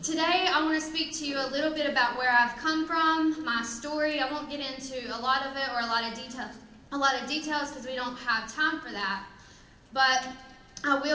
today I want to speak to you a little bit about where I've come from, my story. I won't get into a lot of it or a lot of details because we don't have time for that. But I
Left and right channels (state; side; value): identical; both; correlation 1.00